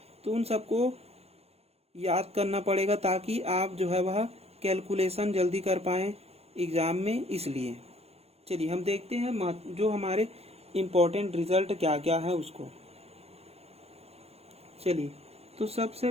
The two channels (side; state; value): left; late; 0.30 ms